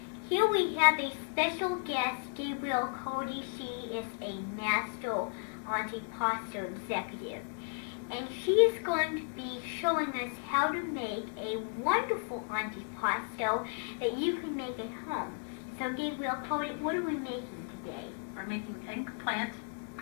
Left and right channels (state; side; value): silent; right; 55 dB below the other